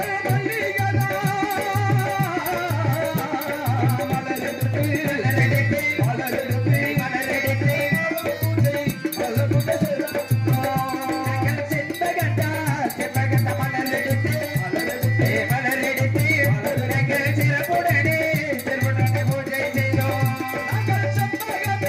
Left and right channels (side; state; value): both; identical; correlation 1.00